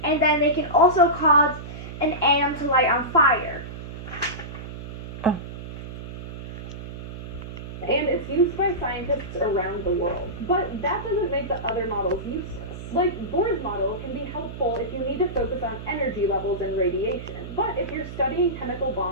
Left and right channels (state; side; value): noise; right; hum, 10 dB below the sound